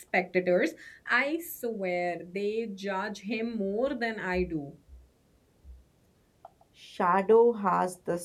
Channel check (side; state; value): both; identical; correlation 1.00